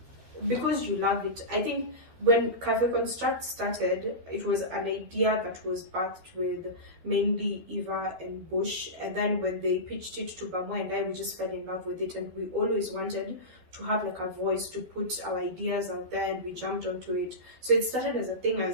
because you love it. I think when Café Construct started, it was an idea that was birthed with mainly Eva and Bush. And then when they pitched it to Bamo and I, we just fell in love with it. And we always wanted to have like a voice to put our ideas out there, and we jumped onto it. So it started as a thing as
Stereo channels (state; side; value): late; left; 12 ms